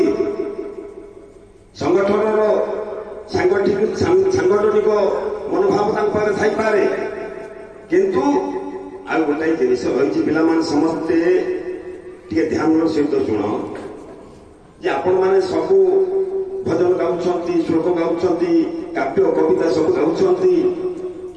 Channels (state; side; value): identical; both; correlation 1.00